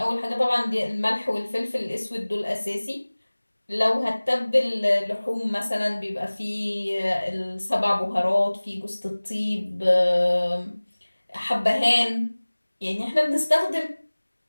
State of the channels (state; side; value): inverted; both; correlation -1.00